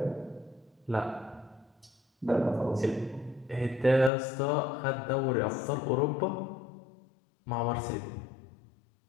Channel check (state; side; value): drops out; right; at 4.1 s